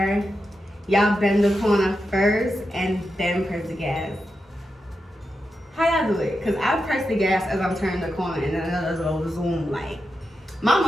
y'all bend the corner first and then press the gas? How y'all do it? Because I press the gas as I'm turning the corner and then it'll go zoom. Like, my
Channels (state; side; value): normal; both; correlation 0.88